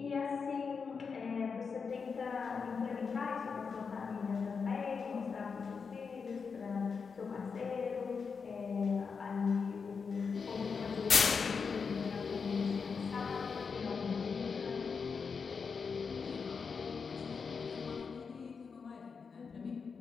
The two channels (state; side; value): quieter; right; 5.5 dB